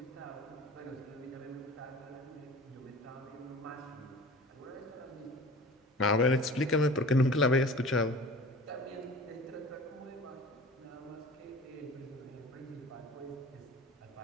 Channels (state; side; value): normal; both; correlation 0.41